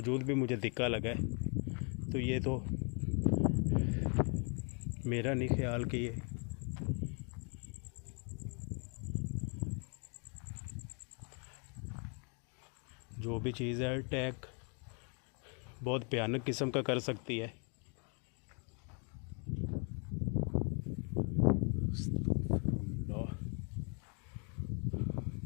भी मुझे धिक्का लगा है। तो ये तो मेरा नहीं ख्याल कि ये जो भी चीज़ है अटैक बहुत भयानक किस्म का कर सकती है।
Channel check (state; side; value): quieter; right; 38.0 dB